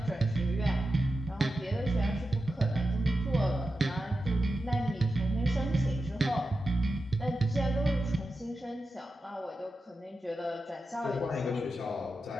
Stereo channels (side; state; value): both; normal; correlation 0.91